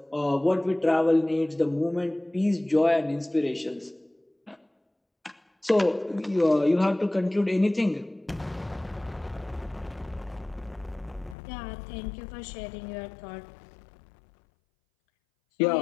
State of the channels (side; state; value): right; drops out; at 11.4 s